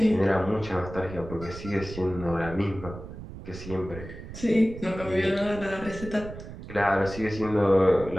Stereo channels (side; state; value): right; noise; rumble, 12 dB below the sound